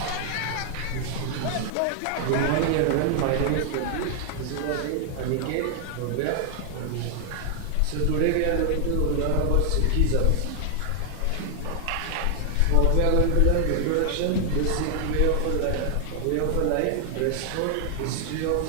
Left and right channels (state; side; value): different; both; correlation 0.00